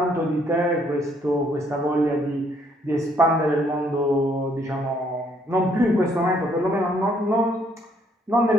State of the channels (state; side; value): normal; both; correlation 0.67